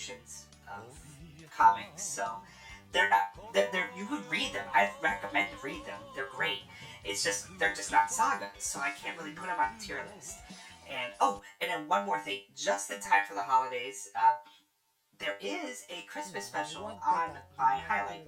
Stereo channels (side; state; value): both; identical; correlation 1.00